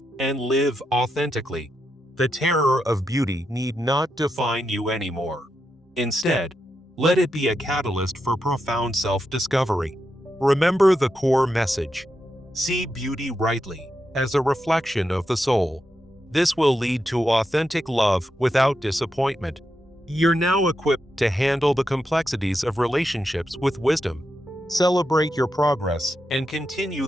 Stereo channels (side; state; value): both; normal; correlation 0.85